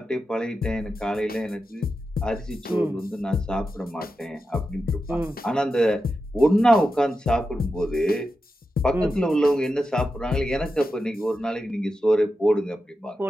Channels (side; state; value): both; normal; correlation 0.90